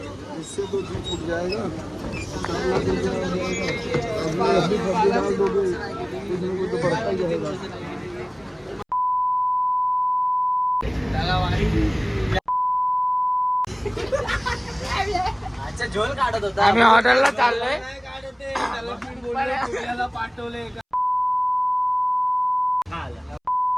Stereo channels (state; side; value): identical; both; correlation 1.00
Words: इससे तो जी फूट जाएगा। तो बढ़ता ही रहेगा। अच्छा झोल काढत होता. आम्ही हॉटेलला चाललोय. पाठवले